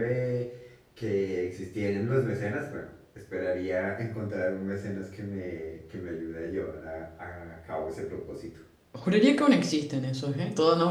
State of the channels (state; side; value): identical; both; correlation 1.00